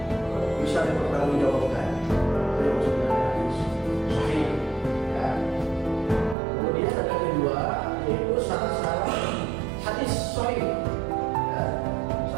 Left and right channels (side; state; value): left; drops out; at 6.4 s